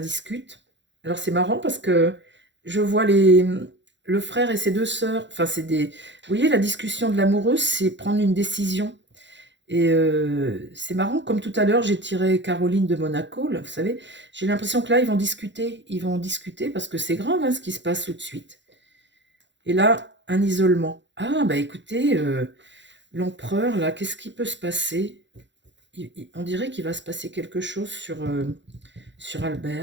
Alors, c'est marrant parce que je vois le frère et ses deux sœurs. Enfin, vous voyez, la discussion de l'amoureuse, c'est prendre une décision. Et c'est marrant, comme tout à l'heure, j'ai tiré Caroline de Monaco, là, vous savez. J'ai l'impression que là, ils vont discuter. Ils vont discuter parce que c'est grave hein, ce qui se passe tout de suite. Et là, un isolement. Ah, écoutez, l'empereur, là, qu'est-ce qui peut se passer? On dirait qu'il va se passer quelque chose sur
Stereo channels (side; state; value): left; late; 0.53 ms